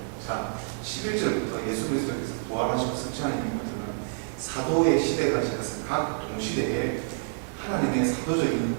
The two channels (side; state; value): left; silent; digital silence